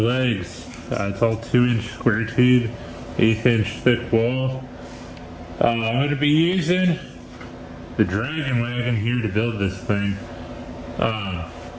It's all 2-inch square tube, 1/8-inch thick wall. I'm gonna be using the Dragon Wagon here to build this thing. So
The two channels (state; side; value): identical; both; correlation 1.00